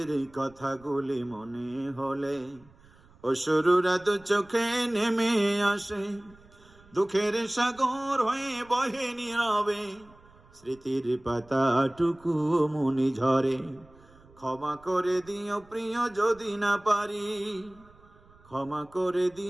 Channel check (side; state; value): right; noise; rumble, 27 dB below the sound